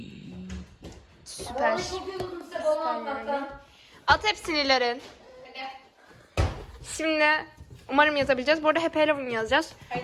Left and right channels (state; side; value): identical; both; correlation 1.00